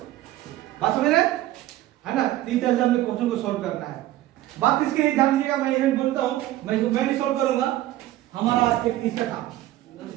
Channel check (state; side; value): quieter; left; 15.0 dB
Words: बात समझ रहे है ना। तीन तरह से हमने क्वेश्चन को सॉल्व करना है। बात इसके लिए ध्यान दीजिएगा, मैं यही बोलता हूं, मैं नहीं सॉल्व करूंगा, हमारा एक इसका था